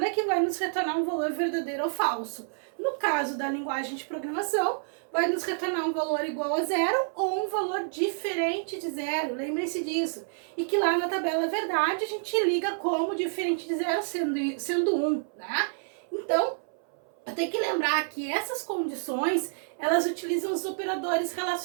que vai nos retornar um valor verdadeiro ou falso. No caso da linguagem de programação, vai nos retornar um valor igual a zero ou um valor diferente de zero. Lembrem-se disso. E que lá na tabela verdade a gente liga como diferente de zero sendo 1, né? Então, eu tenho que lembrar que essas condições, elas utilizam os operadores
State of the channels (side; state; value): left; silent; 59 dB below the other